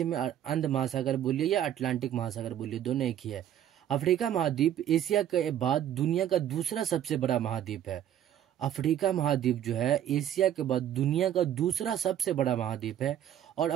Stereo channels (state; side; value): quieter; left; 10.8 dB